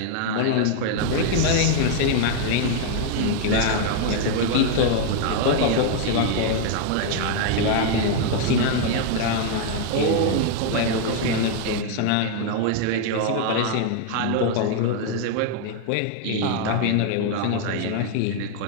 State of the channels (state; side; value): different; both; correlation 0.00